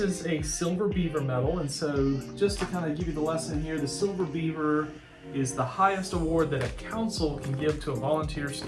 is a silver beaver medal. And so just to kind of give you the lesson here, the silver beaver is the highest award that a council can give to a volunteer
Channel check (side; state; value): both; identical; correlation 1.00